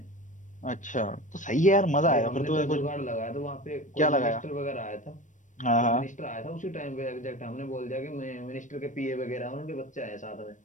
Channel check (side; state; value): right; late; 0.37 ms